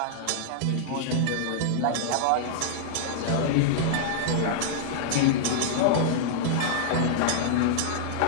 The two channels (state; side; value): different; both; correlation -0.02